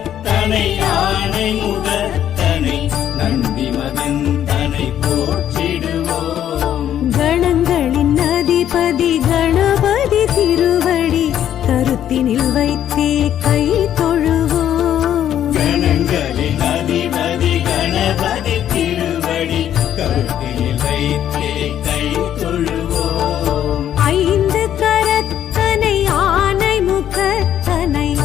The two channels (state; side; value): quieter; right; 10.6 dB